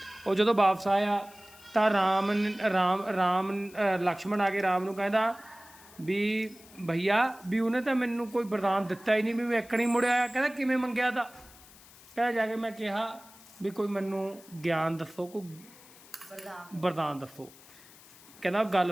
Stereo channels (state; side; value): noise; left; hiss, 22 dB below the sound